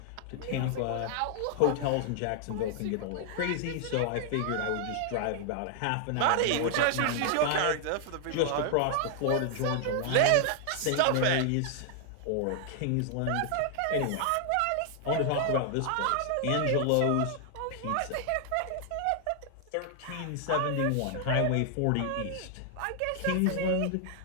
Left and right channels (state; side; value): different; both; correlation 0.00